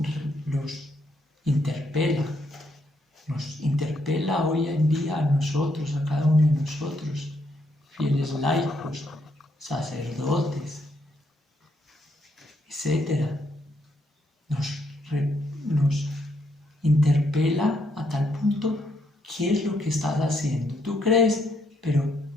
interpela, nos interpela hoy en día a nosotros, a cada uno de nosotros, fieles laicos, sacerdotes, etc. Nos interpela a tal punto, ¿qué es lo que estás haciendo? Tú crees, pero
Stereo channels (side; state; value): both; normal; correlation 0.75